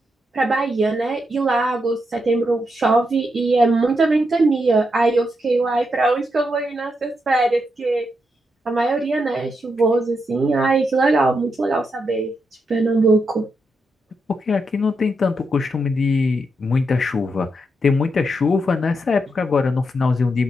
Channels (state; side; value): normal; both; correlation 0.83